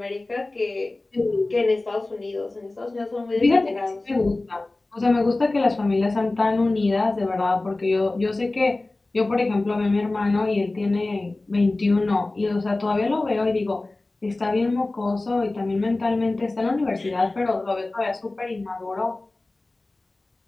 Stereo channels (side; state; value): right; quieter; 3.0 dB